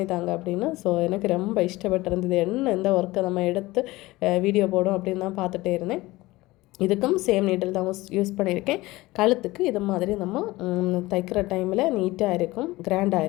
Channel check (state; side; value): quieter; right; 19.5 dB